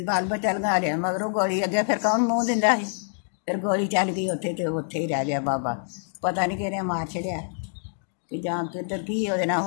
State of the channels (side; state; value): right; silent; digital silence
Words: ਬਾਲ ਬੱਚਾ ਲੰਘਾ ਲਿਆ ਮਗਰੋਂ ਗੋਲੀ ਅੱਗੇ, ਫਿਰ ਕੌਣ ਮੂੰਹ ਦਿੰਦਾ ਸੀ? ਫਿਰ ਗੋਲੀ ਚੱਲ ਗਈ ਉੱਥੇ ਤੇ ਉੱਥੇ ਹੀ ਰਹਿ ਗਿਆ ਬਾਬਾ। ਪਤਾ ਨਹੀਂ ਕਿਹਨੇ ਮਾਰ ਛੜਿਆ ਕਿ ਜਾਂ ਕਿੱਧਰ ਕੀ ਉਹਦੇ ਨਾਲ